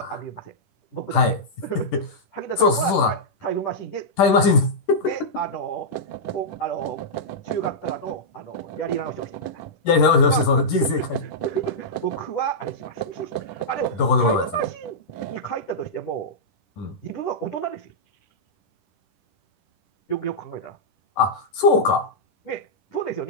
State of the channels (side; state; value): right; late; 10 ms